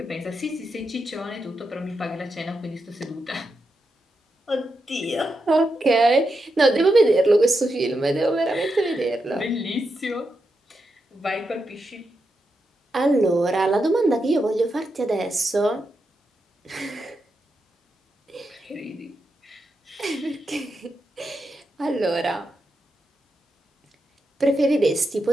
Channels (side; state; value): both; normal; correlation 0.86